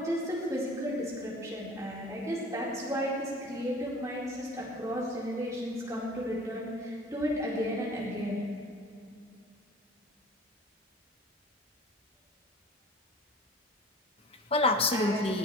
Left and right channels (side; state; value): both; normal; correlation 0.43